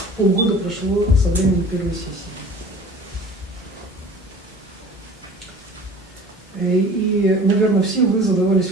Полгода прошло со времени первой сессии. И, наверное, все вы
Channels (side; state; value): both; normal; correlation 0.44